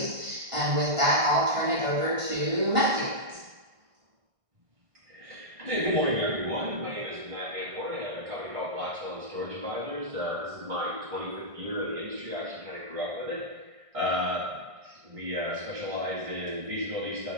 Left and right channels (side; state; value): left; late; 1.6 ms